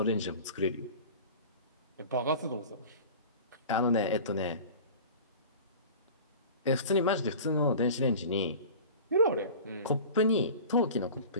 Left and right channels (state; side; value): inverted; both; correlation -0.38